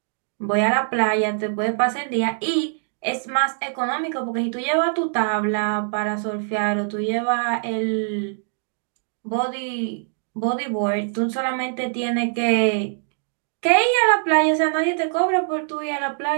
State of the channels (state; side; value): silent; left; digital silence